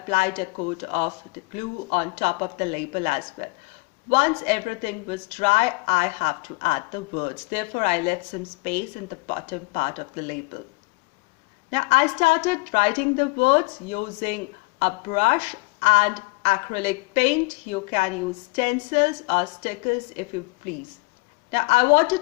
a coat of the glue on top of the label as well. Once everything was dry, I have to add the words. Therefore, I left some space in the bottom part of the label. Now, I started writing the words using a brush and acrylic paint. You can use stencils or stickers if you please. Now, I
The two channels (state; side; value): quieter; right; 27.9 dB